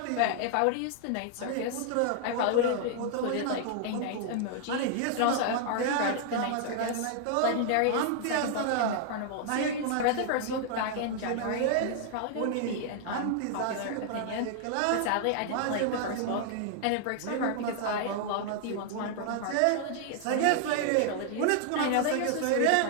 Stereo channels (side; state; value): both; different; correlation 0.00